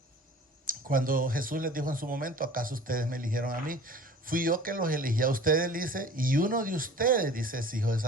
cuando Jesús les dijo en su momento, ¿acaso ustedes me eligieron a mí? Fui yo que los elegí a ustedes, dice, y uno de ustedes, dice, es hijo de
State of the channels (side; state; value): both; normal; correlation 0.44